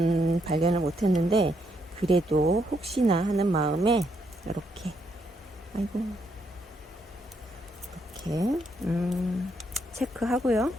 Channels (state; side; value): normal; both; correlation 0.76